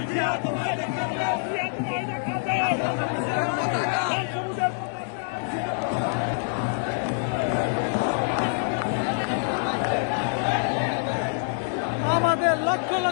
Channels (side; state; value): right; silent; digital silence